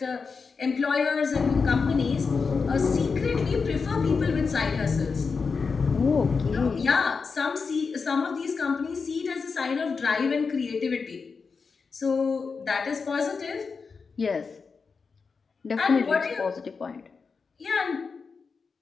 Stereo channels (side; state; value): right; quieter; 5.0 dB